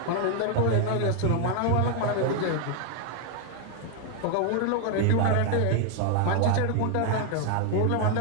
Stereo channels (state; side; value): different; both; correlation 0.01